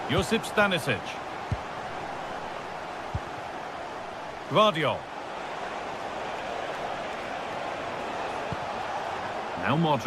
Josip Stanisic. Gvardiol. Now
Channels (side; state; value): both; identical; correlation 1.00